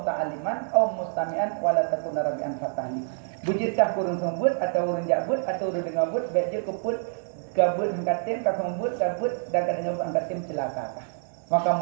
au mustami'an wala takun rabi'an fatahli. Bujitkah kurun sembut atau urun jabut atau urun dengar but bek je keput gabut hangkatim kasong but gabut dan kadang hangkatim celaka. Maka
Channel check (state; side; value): silent; left; digital silence